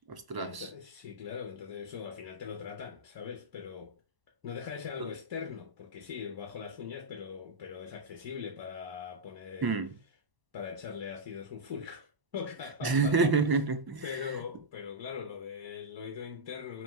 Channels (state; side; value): late; left; 1.0 ms